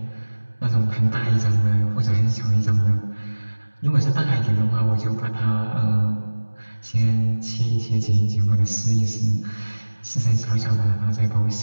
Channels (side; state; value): both; inverted; correlation -1.00